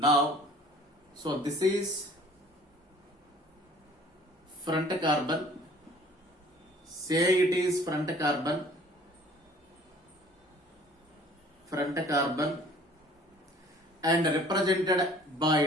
so this is front carbon. Say it is front carbon. Front carbon and represented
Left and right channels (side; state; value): both; normal; correlation 0.52